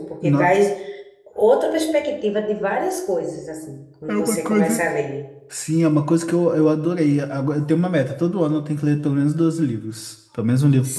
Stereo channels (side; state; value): both; identical; correlation 1.00